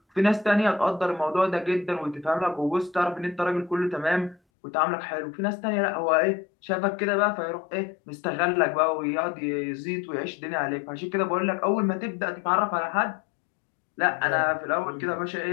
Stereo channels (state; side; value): drops out; right; at 4.4 s